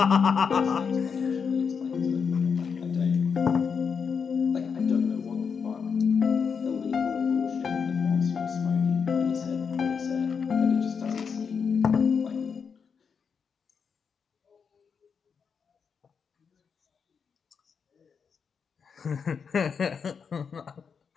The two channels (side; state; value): right; quieter; 6.2 dB